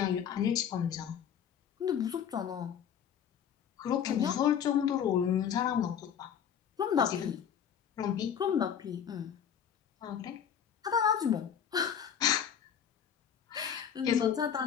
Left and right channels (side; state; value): right; quieter; 8.4 dB